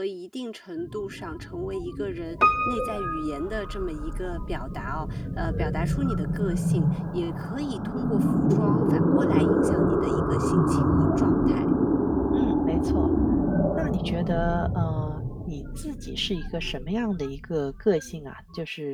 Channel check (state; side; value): identical; both; correlation 1.00